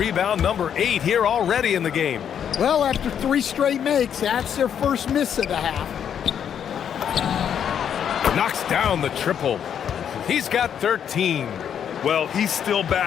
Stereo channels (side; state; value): right; quieter; 8.6 dB